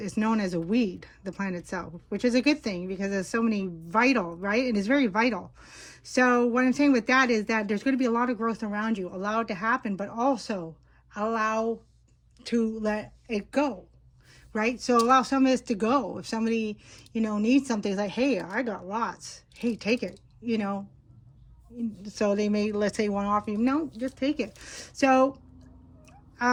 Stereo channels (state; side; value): identical; both; correlation 1.00